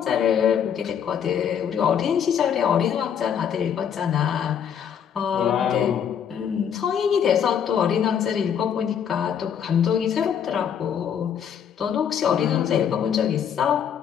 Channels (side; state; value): right; quieter; 8.3 dB